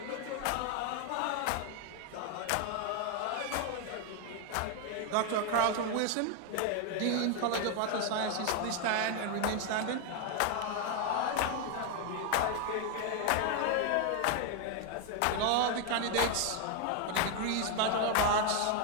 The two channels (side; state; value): both; different; correlation 0.01